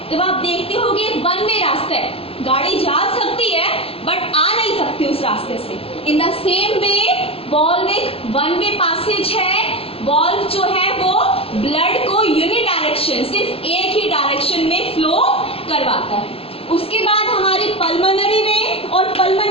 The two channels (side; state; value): right; late; 0.27 ms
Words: तब आप देखते हो कि वन वे रास्ता है, गाड़ी जा सकती है बट आ नहीं सकती उस रास्ते से। In the same way valve एक वन वे पैसेज है। वॉल्व जो है वो ब्लड को यूनिडायरेक्शन, सिर्फ एक ही डायरेक्शन में फ्लो करवाता है। उसके बाद हमारी पल्मोनरी वेन और